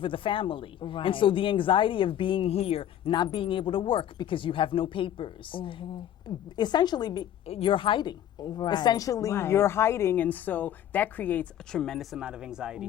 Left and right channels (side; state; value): right; quieter; 10.9 dB